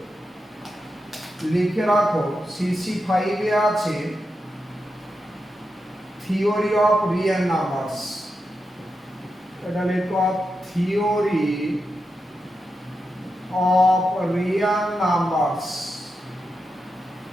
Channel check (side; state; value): both; normal; correlation 0.88